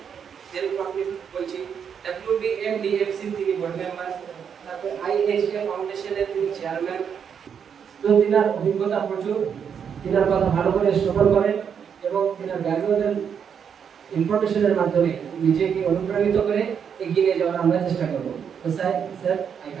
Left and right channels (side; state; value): left; quieter; 7.4 dB